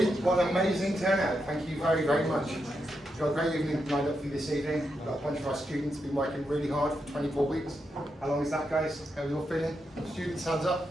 what an amazing turnout, thank you very, very much. We've got a great evening lined up for you this evening. We've got a bunch of our students been working really hard for 24 weeks. How long is that, guys? How are you all feeling? Students, hands up.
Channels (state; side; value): normal; both; correlation 0.84